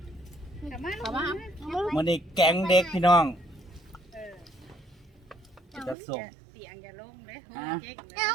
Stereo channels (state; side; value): drops out; left; at 6.0 s